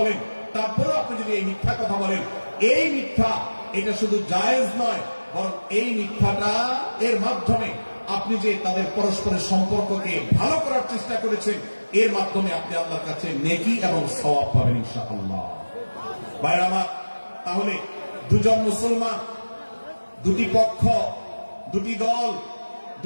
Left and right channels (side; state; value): both; inverted; correlation -1.00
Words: তারপরেও আপনি যদি এই মিথ্যা কথা বলেন, এই মিথ্যা এটা শুধু জায়েজ নয়, বরং এই মিথ্যাটা এর মাধ্যমে আপনি যে তাদের পরস্পরের সম্পর্ককে ভালো করার চেষ্টা করেছেন, এর মাধ্যমে আপনি আল্লাহর কাছে নেকি এবং সওয়াব পাবেন ইনশাআল্লাহ। ভাইরা আমার, তাহলে দুজন মুসলমান, দুটি পক্ষ, দুটি দল,